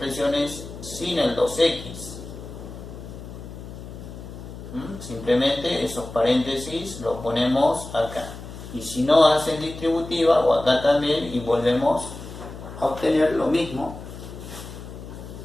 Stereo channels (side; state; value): left; noise; hum, 12 dB below the sound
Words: sin el 2x. Simplemente esos paréntesis los ponemos acá. Y si no, hacen distributiva o acá también y volvemos a obtener lo mismo.